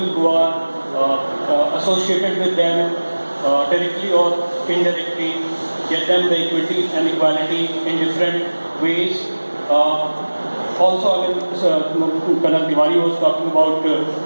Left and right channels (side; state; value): both; inverted; correlation -1.00